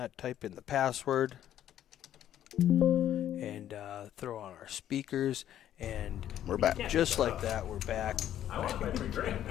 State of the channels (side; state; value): right; quieter; 11.3 dB